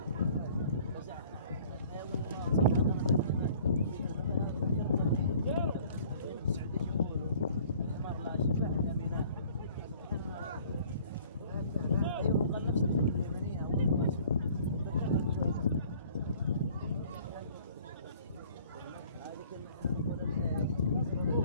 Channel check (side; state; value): both; inverted; correlation -0.53